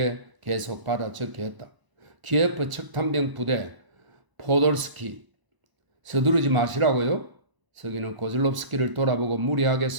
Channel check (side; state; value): left; late; 1.0 ms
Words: 계속 받아 적게 했다. 키예프 척탄병 부대 포돌스키. 서두르지 마시라고요? 서기는 고즐롭스키를 돌아보고 무리하게